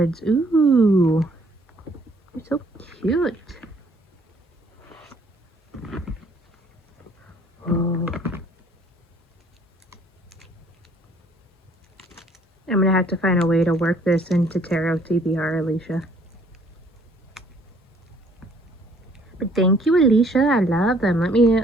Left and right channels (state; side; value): normal; both; correlation 0.61